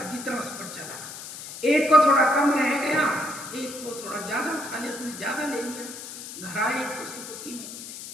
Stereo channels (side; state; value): left; noise; hiss, 11 dB below the sound